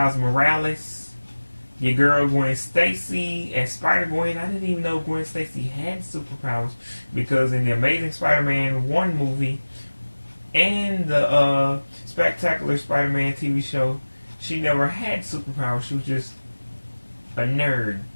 Morales, your girl Gwen Stacy, and Spider-Gwen. I didn't even know Gwen Stacy had superpowers, because in the Amazing Spider-Man 1 movie and the Spectacular Spider-Man TV show, she never had superpowers. She was just a nerd.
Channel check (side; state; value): both; inverted; correlation -1.00